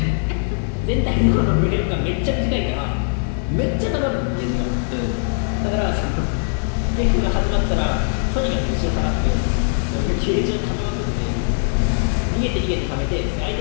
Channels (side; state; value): right; silent; 63 dB below the other